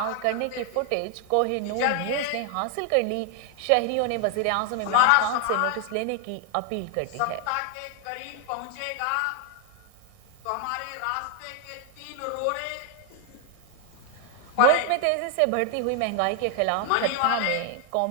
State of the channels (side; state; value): both; different; correlation 0.00